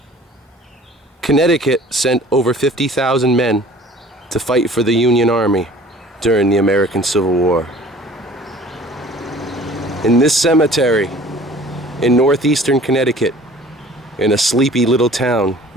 Connecticut sent over 50,000 men to fight for the Union Army during the American Civil War. In this cemetery, in northeastern Connecticut, in a sleepy little town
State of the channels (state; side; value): normal; both; correlation 0.48